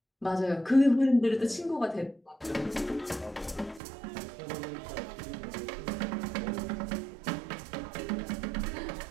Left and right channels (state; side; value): drops out; left; at 3.8 s